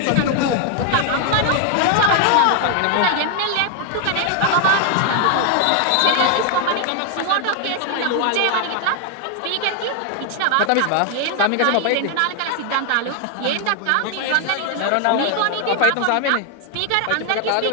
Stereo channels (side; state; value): both; different; correlation 0.00